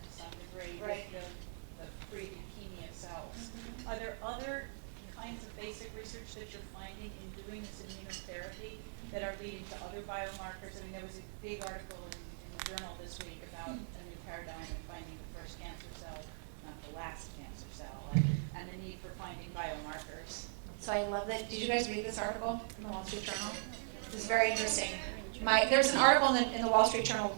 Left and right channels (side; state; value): left; silent; digital silence